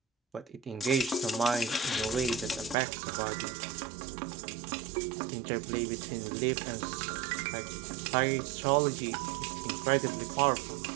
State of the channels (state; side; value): drops out; left; at 2.8 s